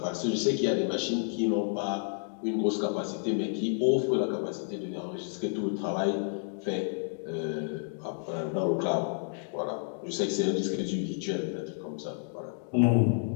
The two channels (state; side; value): silent; right; digital silence